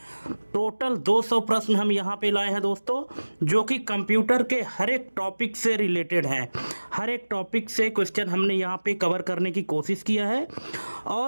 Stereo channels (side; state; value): both; inverted; correlation -1.00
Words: टोटल 200 प्रश्न हम यहाँ पे लाए हैं दोस्तों, जो कि कंप्यूटर के हर एक टॉपिक से रिलेटेड हैं। हर एक टॉपिक से क्वेश्चन हमने यहाँ पे कवर करने की कोशिश किया है,